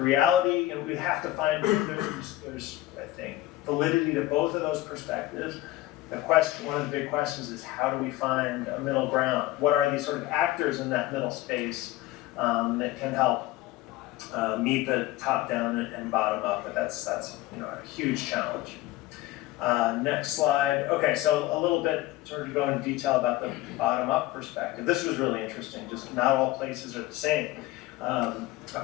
and we have to find, there's I think, validity to both of those perspectives. The question, one of the big questions is, how do we find a middle ground? What are these sort of actors in that middle space that can help meet the top-down and bottom-up? But that's a huge challenge. Next slide. Okay, so a little bit sort of go into detail about the bottom-up perspective. This was really interesting. Just not all places are the same. A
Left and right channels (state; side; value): quieter; right; 16.3 dB